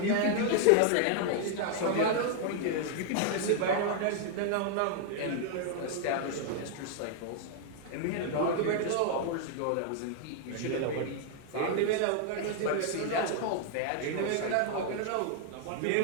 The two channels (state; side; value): different; both; correlation 0.00